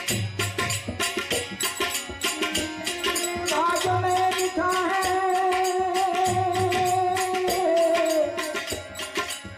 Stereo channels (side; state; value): both; identical; correlation 1.00